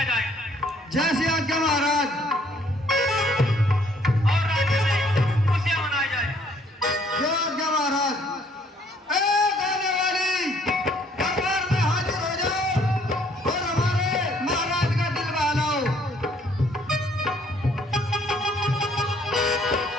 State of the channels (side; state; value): both; normal; correlation 0.63